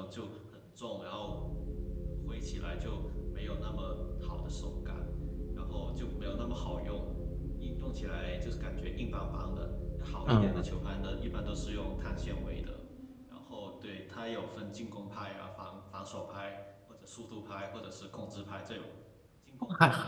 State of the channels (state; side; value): identical; both; correlation 1.00